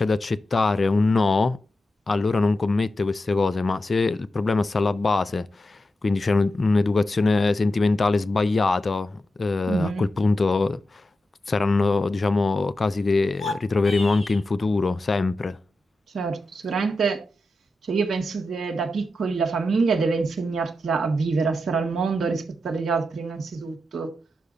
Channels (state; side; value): normal; both; correlation 0.90